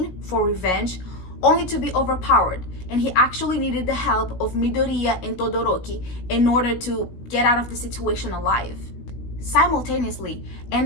for revenge, only to be overpowered, and he actually needed the help of Midoriya and Todoroki in order to get out of the situation alive. Simultaneously,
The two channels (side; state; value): right; late; 17 ms